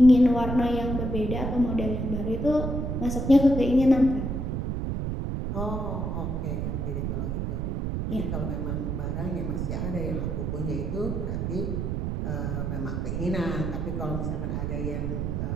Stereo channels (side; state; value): right; noise; rumble, 1 dB below the sound